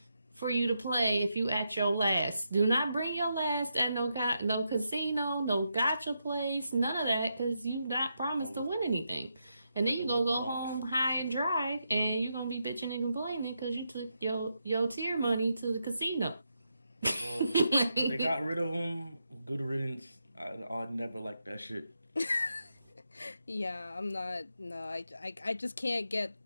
for you to play if you at your last. Do not bring your last at no casino, no gotcha place, none of that, because you not promised to win anything. And then you gonna go home high and dry, and you're gonna be bitching and complaining because you took your tier money to the casino. Well, they got rid of them. Good riddance. I never liked that shit. Yeah, I'm not. No, I just can't get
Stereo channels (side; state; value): both; inverted; correlation -0.83